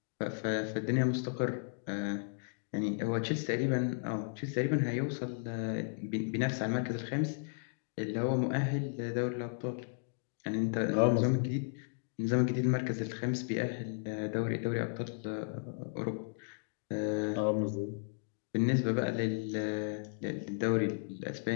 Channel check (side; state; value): right; silent; digital silence